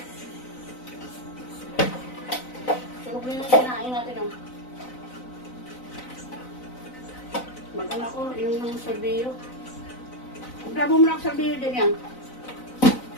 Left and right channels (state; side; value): late; right; 4.0 ms